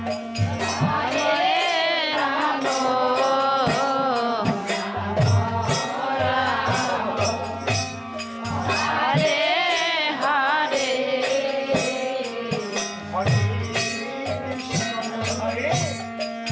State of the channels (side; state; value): both; identical; correlation 1.00